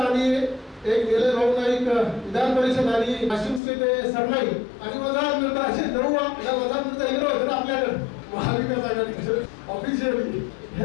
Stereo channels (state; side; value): drops out; right; at 3.6 s